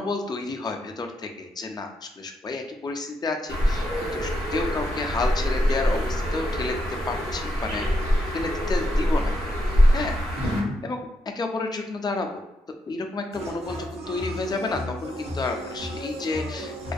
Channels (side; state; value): both; normal; correlation 0.80